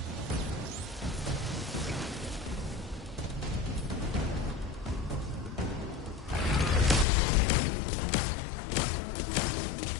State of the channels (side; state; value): right; drops out; at 7.1 s